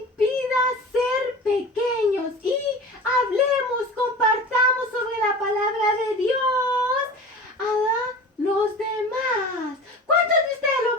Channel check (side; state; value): both; normal; correlation 0.36